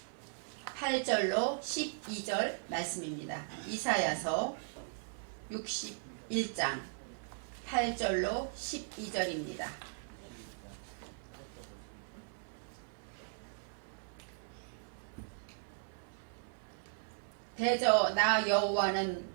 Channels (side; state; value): left; silent; 53 dB below the other